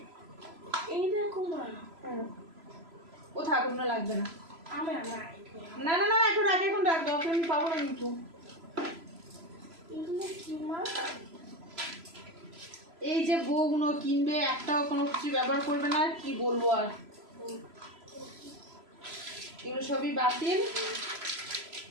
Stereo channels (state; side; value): late; left; 3.0 ms